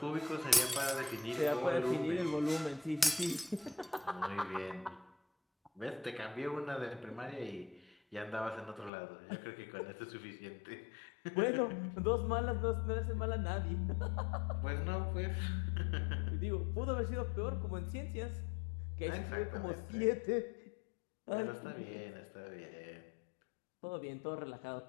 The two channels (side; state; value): right; drops out; at 8.9 s